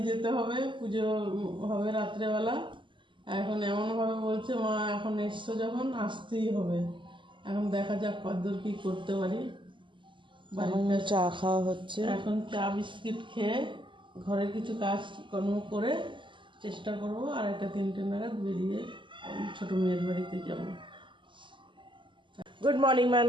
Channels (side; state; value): left; late; 0.24 ms